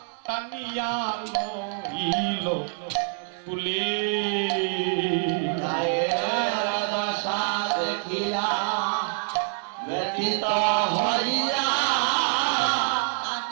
টানিয়া লইল কুলে গায়ের দশা দেখিয়া ব্যতীত হইয়া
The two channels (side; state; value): left; silent; 56 dB below the other